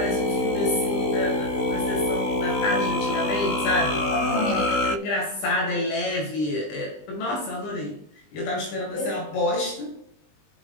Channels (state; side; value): late; right; 20 ms